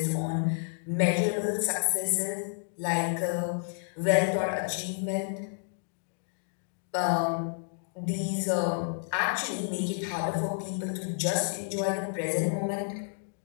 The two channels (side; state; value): right; silent; digital silence